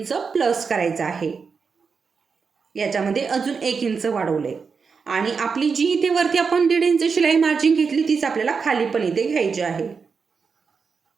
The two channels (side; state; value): left; quieter; 5.4 dB